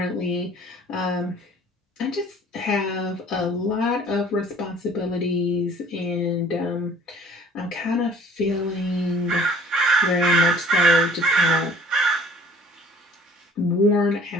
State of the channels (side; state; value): both; normal; correlation 0.52